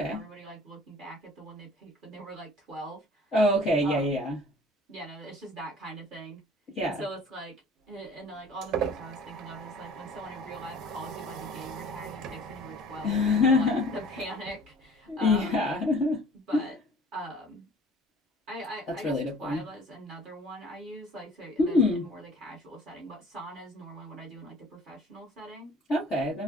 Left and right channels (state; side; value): normal; both; correlation 0.49